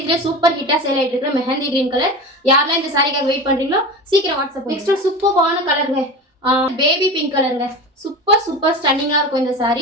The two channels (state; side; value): normal; both; correlation 0.29